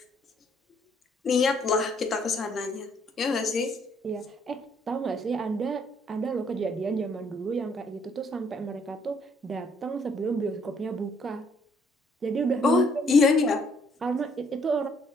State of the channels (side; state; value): both; normal; correlation 0.66